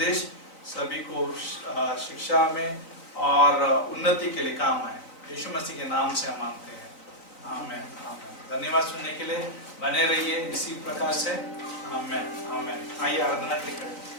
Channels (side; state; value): right; late; 4.0 ms